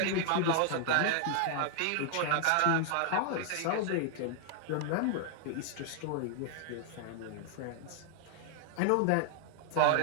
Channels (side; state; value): both; different; correlation 0.00